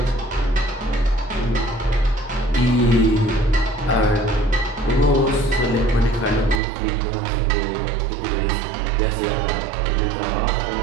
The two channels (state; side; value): drops out; left; at 6.6 s